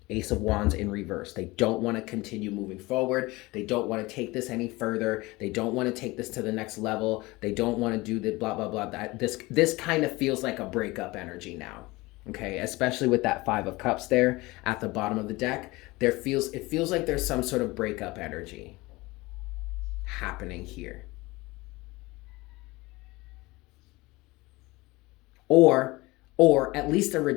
Ace of Wands in reverse. They don't want to continue moving forward. They don't want to take this any further. They don't want to take this to the next level. They don't want to do the blah, blah, blah. This kind of feels like a breakup energy now. Okay, especially with that Five of Cups there at the bottom of the deck. It feels like there's some sort of breakup energy happening here. Or at least a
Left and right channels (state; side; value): quieter; right; 21.7 dB